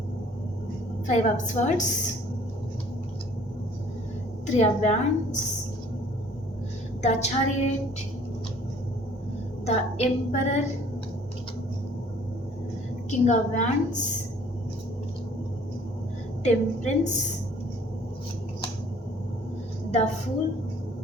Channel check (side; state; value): both; normal; correlation 0.56